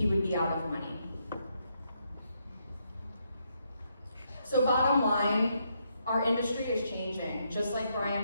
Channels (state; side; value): inverted; both; correlation -0.78